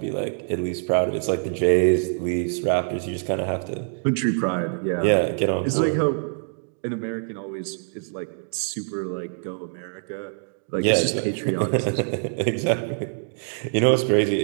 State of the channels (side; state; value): left; silent; digital silence